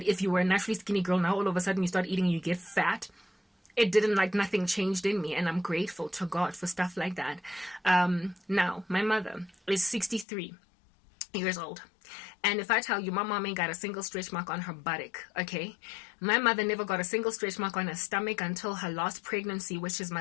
if you were a naturally skinny girl, now all of a sudden you start eating and you get fat. It didn't, like, nothing changed in me, and I'm grateful to God for stuff like that. Now, my mother is 63 years old. And if I tell you, my mom ain't got a single stretch mark on her buttock, okay? My mother never got a single stretch mark on her stomach until her last pregnancy, which is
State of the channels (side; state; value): right; drops out; at 10.2 s